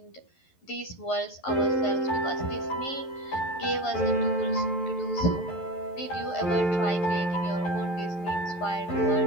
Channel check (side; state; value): right; late; 11 ms